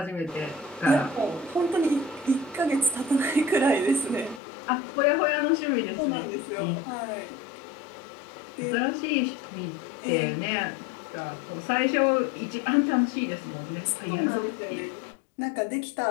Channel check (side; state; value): right; drops out; at 4.4 s